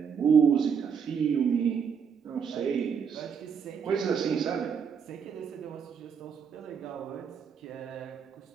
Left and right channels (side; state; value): left; quieter; 6.8 dB